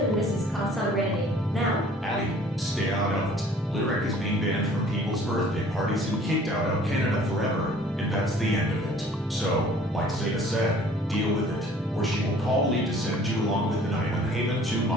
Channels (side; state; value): both; normal; correlation 0.52